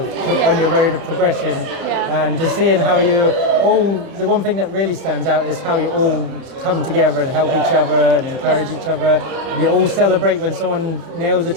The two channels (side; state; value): left; late; 30 ms